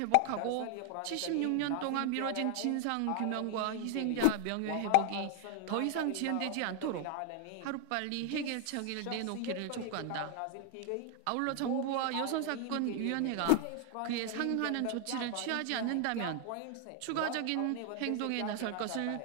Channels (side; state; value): both; different; correlation 0.00